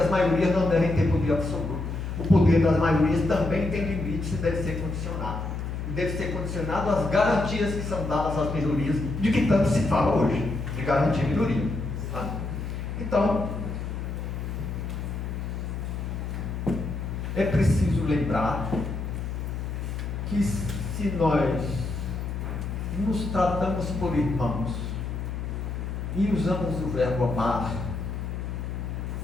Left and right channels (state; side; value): noise; left; hum, 4 dB below the sound